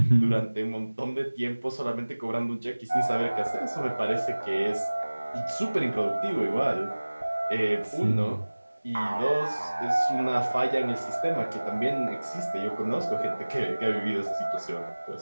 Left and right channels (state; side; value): inverted; both; correlation -1.00